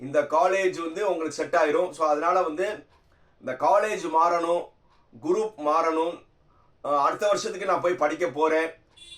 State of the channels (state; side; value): identical; both; correlation 1.00